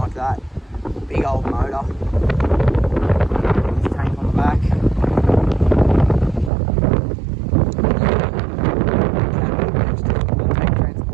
that. Big old motor. This tank on the back. Tank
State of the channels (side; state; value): left; drops out; at 6.5 s